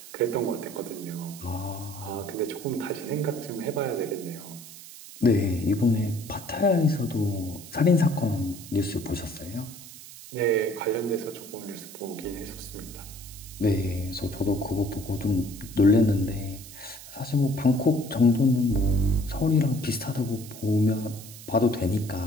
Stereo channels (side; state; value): right; noise; hiss, 16 dB below the sound